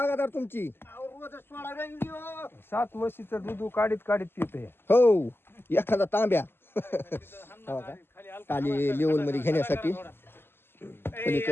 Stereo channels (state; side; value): late; right; 0.11 ms